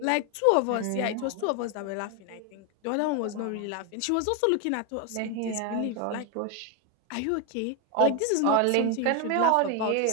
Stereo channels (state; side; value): different; both; correlation 0.01